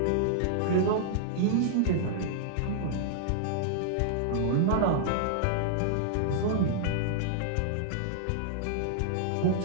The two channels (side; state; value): both; different; correlation -0.01